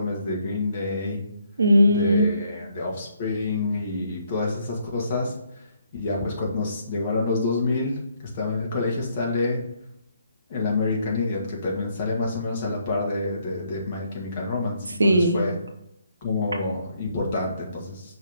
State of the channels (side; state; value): both; inverted; correlation -0.70